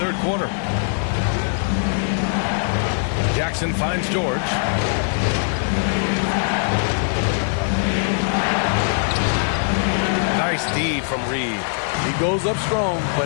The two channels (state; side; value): silent; right; digital silence